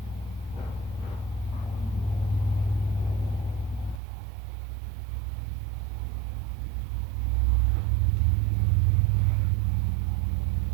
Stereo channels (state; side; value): drops out; left; at 4.0 s